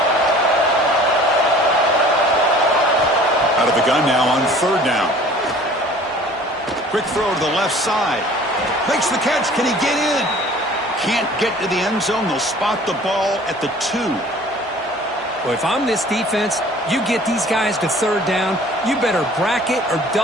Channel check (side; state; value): both; normal; correlation 0.49